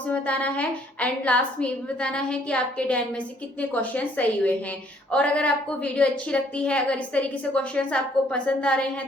में बताना है एंड लास्ट में ये भी बताना है कि आपके 10 में से कितने क्वेश्चन सही हुए हैं। और अगर आपको वीडियो अच्छी लगती है, अगर इस तरीके से क्वेश्चन आपको पसंद आ रहे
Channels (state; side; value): normal; both; correlation 0.63